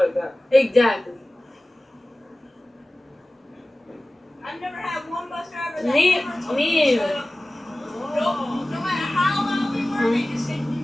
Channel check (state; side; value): normal; both; correlation 0.97